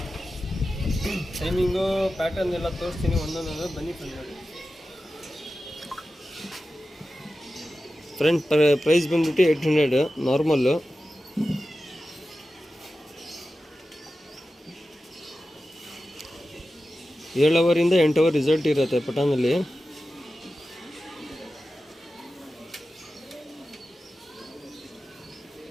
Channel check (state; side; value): normal; both; correlation 0.93